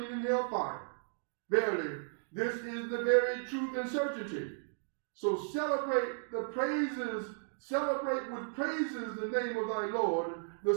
in hellfire. Verily, this is the very truth and certainty. So celebrate the praises celebrate with praises the name of thy Lord, the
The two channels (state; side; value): silent; left; digital silence